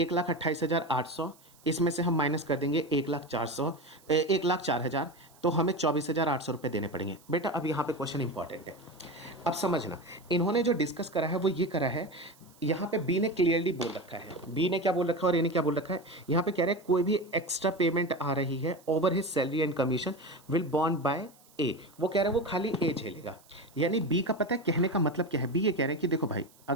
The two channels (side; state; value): right; noise; hiss, 28 dB below the sound